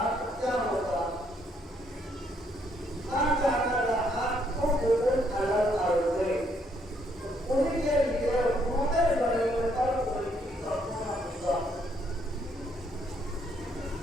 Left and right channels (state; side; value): normal; both; correlation 0.71